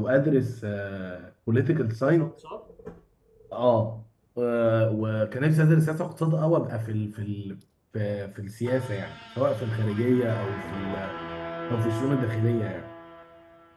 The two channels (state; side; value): identical; both; correlation 1.00